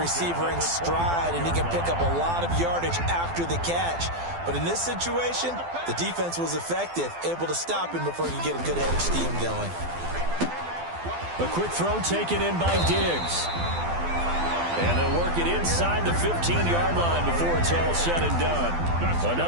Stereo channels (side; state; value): left; late; 12 ms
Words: in stride, and he can pick up a lot of yardage after the catch. But in this situation, the defense was effective, able to stop him before he could get a good head of steam going. A quick throw taken in by Diggs. And they'll work it inside the 15-yard line before it's all said and done.